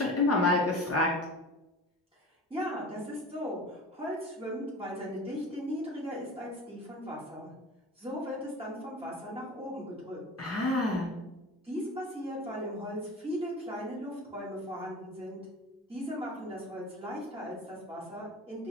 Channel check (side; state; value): both; normal; correlation 0.35